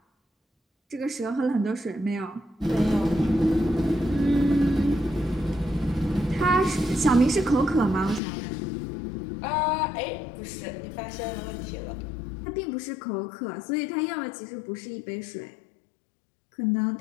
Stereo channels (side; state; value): right; drops out; at 8.2 s